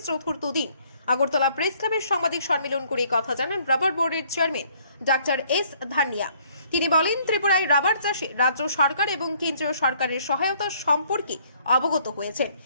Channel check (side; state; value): both; inverted; correlation -0.62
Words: চতুর্থ দিন আগরতলা প্রেস ক্লাবের সাংবাদিক সম্মেলন করে কথা জানান রাবার বোর্ডের চেয়ারম্যান ডক্টর এস ধানিয়া। তিনি বলেন, ত্রিপুরায় রাবার চাষে রাজ্য সরকার এবং কেন্দ্রীয় সরকারের সহায়তা সম্পর্কে অবগত হয়েছেন।